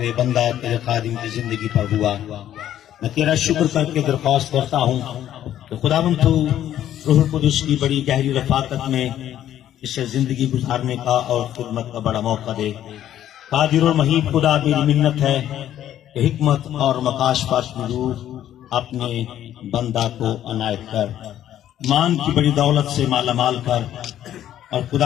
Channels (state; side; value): quieter; right; 11.5 dB